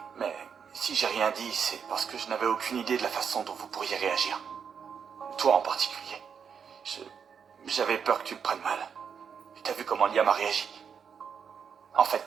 mais si j'ai rien dit, c'est parce que je n'avais aucune idée de la façon dont vous pourriez réagir. Toi en particulier. J'avais peur que tu le prennes mal. T'as vu comment Liam a réagi. En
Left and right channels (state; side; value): quieter; left; 6.9 dB